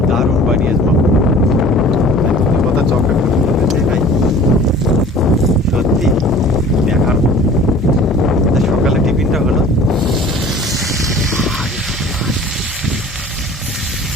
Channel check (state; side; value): normal; both; correlation 0.46